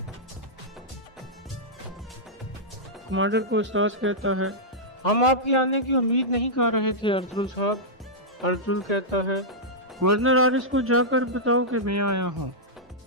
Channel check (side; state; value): both; normal; correlation -0.10